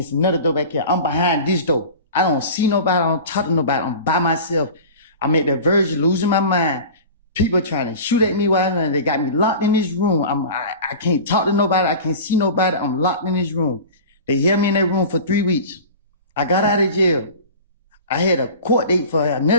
another door back here. I'm behind this door. I don't see nobody, I don't talk to nobody, I'm by myself. I'm at the verge of losing my mind. People trying to shoot at me while they got me locked in this room. I can't talk to nobody, I can't see nobody, I'm locked in this room. They held me in that room for 3 weeks. I got out of jail. I had a court date for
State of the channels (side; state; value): both; inverted; correlation -0.36